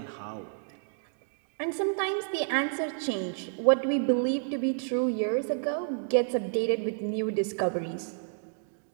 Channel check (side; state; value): left; silent; digital silence